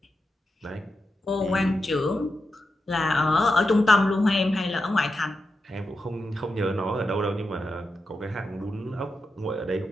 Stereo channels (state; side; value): normal; both; correlation 0.88